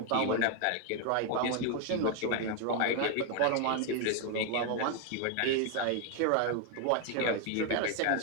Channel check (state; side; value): different; both; correlation 0.01